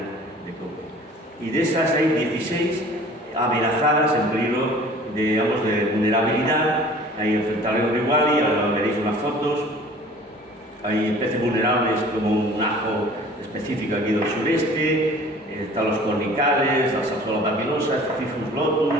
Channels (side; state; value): both; normal; correlation 0.47